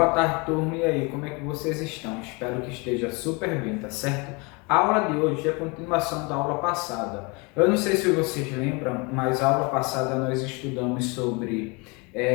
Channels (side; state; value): right; quieter; 29.1 dB